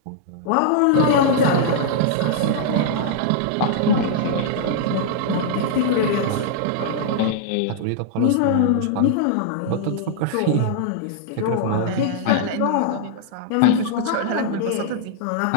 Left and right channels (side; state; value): both; different; correlation -0.01